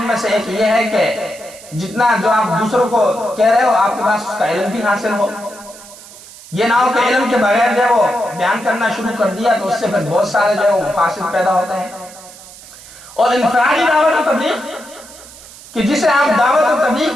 میں سے ایک یہ ہے کہ جتنا جو آپ دوسروں کو کہہ رہے ہو آپ کے پاس اس کا علم بھی حاصل ہو. یہ نہ ہو کہ علم کے بغیر جو ہے وہ بیان کرنا شروع کر دیا تو اس سے پھر بہت سارے جو ہے وہ مفاسد پیدا ہوتے ہیں. اور انفرادی دعوت و تبلیغ کہ جسے آپ دعوت و تبلیغ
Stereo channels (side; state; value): right; noise; hiss, 19 dB below the sound